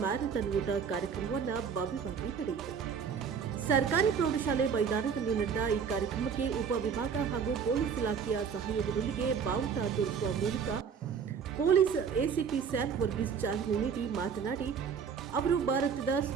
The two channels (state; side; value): quieter; left; 6.7 dB